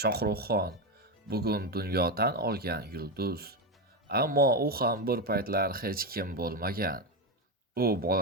Shohruxxon bugun dunyodan olgan yulduz, ammo u ham bir paytlar hech kim bo'lmagan. U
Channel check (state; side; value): normal; both; correlation 0.12